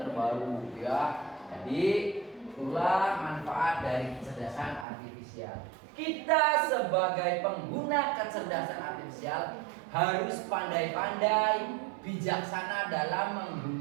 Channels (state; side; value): drops out; left; at 4.9 s